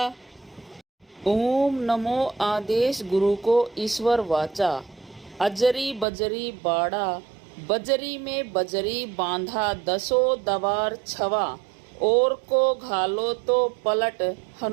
ओम नमो आदेश गुरु को ईश्वर वाचा, अजरी बजरी बाड़ा, बजरी में बजरी बांधा, दसो दवार छवा, और को घालो तो पलट,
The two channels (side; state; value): left; drops out; at 6.1 s